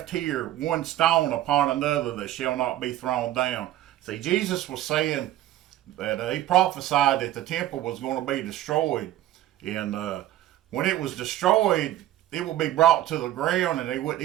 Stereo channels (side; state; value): left; quieter; 13.8 dB